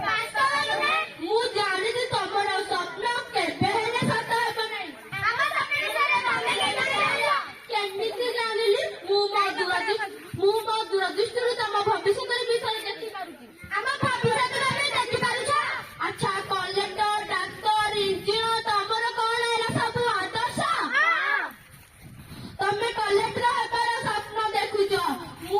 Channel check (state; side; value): identical; both; correlation 1.00